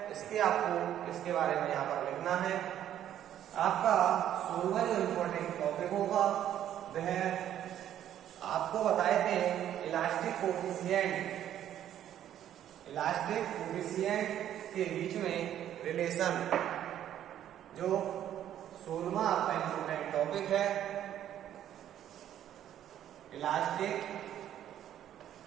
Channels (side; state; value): left; quieter; 11.0 dB